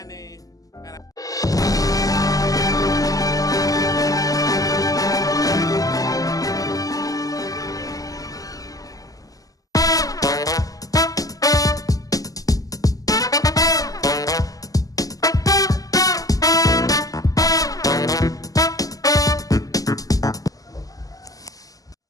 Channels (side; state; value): right; late; 0.17 ms